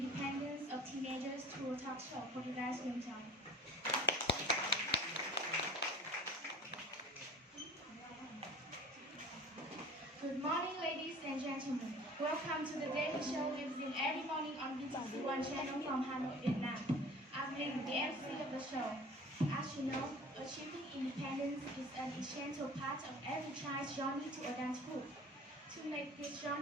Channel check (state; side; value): normal; both; correlation 0.44